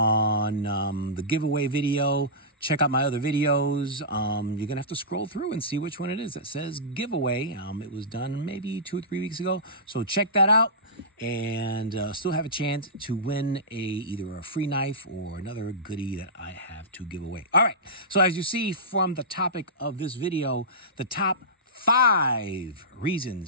the giveaway video, check out my other videos. You're gonna have to scroll through and see which one it is that says giveaway. It was done maybe 2 or 3 weeks ago. So check that out and still have a chance to win either a free knife or another goodie that I have to give away. All right, so as you see from the topic of this video, the top 5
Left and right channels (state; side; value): normal; both; correlation -0.18